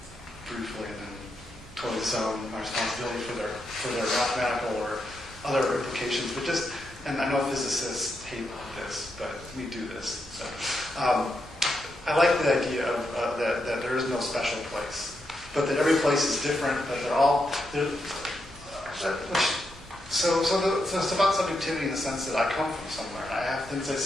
briefly and then totally disown my responsibility for their mathematical or other implications, but just, and I know physicists hate this, but we do this. So, I like the idea of that there is no special place, but that every place is different, but they're all, so it's about subjectivity in the sense that I come from somewhere, and I have things I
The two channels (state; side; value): normal; both; correlation 0.83